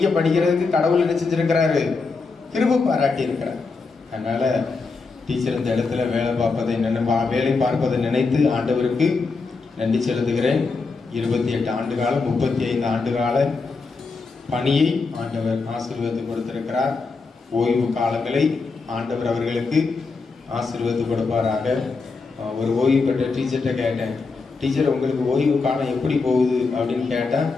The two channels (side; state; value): right; quieter; 4.3 dB